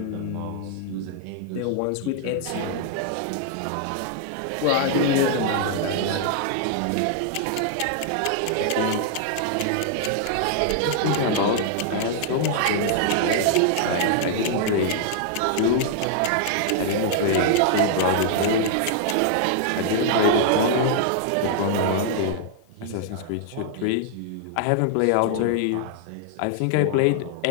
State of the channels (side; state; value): both; different; correlation -0.01